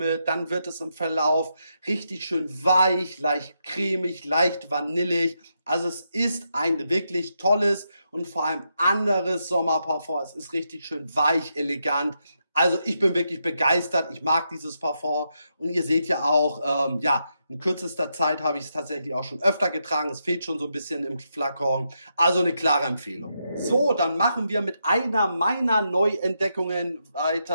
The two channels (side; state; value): both; inverted; correlation -0.82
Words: dann wird es im Verlauf richtig schön weich, leicht cremig, leicht vanillig. Also es ist ein wirklich tolles und vor allem anderes Sommerparfum. Es ist richtig schön weich, elegant. Also ich bin wirklich begeistert. Ich mag dieses Parfum. Und ihr seht ja auch, ja, in kürzester Zeit habe ich es tatsächlich auch schon öfter getragen. Es fehlt schon so ein bisschen im Flakon. Also eine klare Empfehlung. So, dann machen wir mit einer meiner Neuentdeckungen